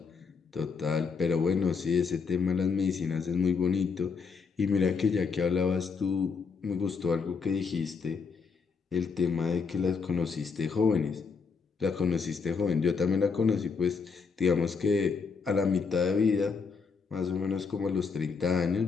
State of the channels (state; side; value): quieter; right; 5.3 dB